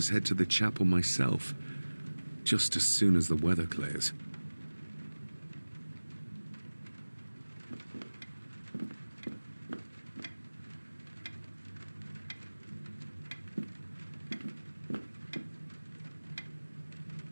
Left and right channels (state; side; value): inverted; both; correlation -1.00